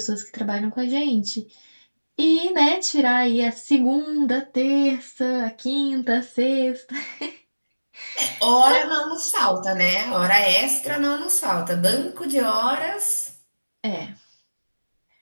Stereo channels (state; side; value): inverted; both; correlation -1.00